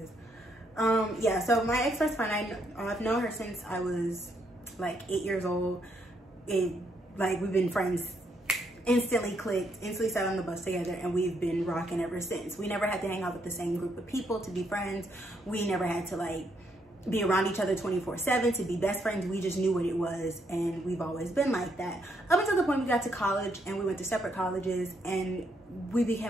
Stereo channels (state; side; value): normal; both; correlation 0.74